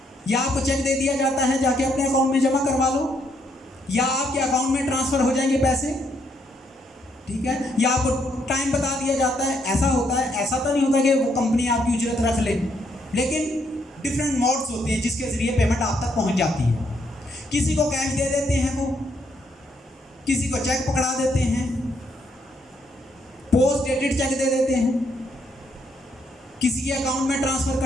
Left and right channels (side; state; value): both; normal; correlation 0.73